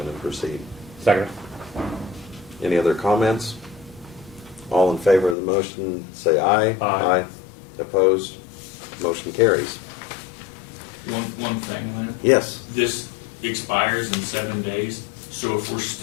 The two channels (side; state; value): right; drops out; at 5.4 s